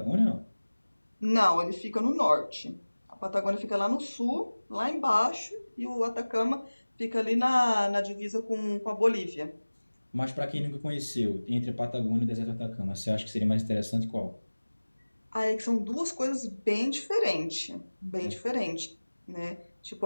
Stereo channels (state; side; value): inverted; both; correlation -1.00